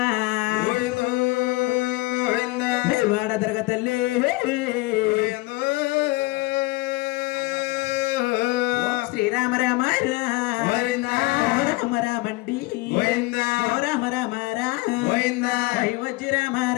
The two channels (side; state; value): right; quieter; 22.3 dB